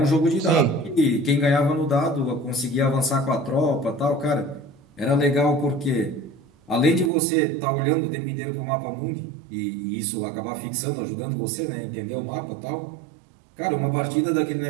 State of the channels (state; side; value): drops out; left; at 7.1 s